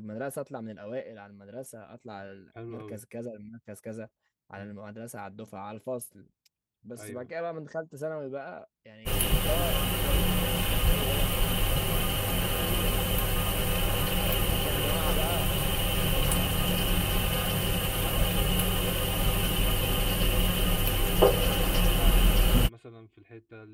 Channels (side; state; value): both; identical; correlation 1.00